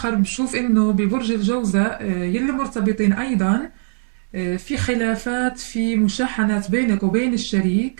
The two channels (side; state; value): left; silent; digital silence